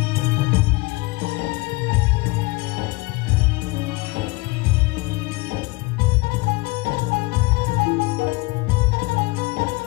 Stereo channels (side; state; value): right; quieter; 23.5 dB